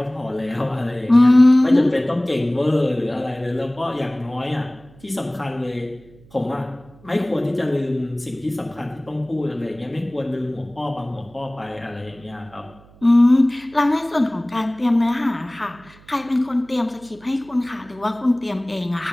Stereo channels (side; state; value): right; noise; hum, 25 dB below the sound